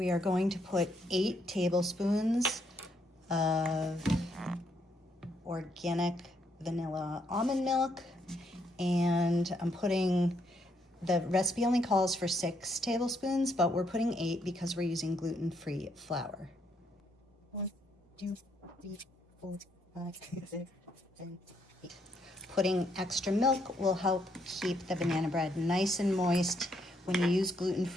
are going to put 8 tablespoons of organic vanilla almond milk, and I'm putting, the recipe only calls for 6 tablespoons, but we're putting 8 because we're using gluten-free flour. 1, 2, 3, 4, 5, 6, 7, 8. Putting extra milk will help keep the banana bread nice and moist. When you use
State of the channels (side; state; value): both; normal; correlation 0.74